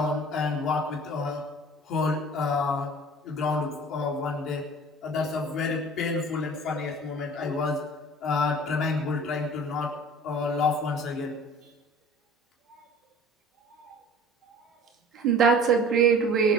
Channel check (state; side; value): normal; both; correlation 0.45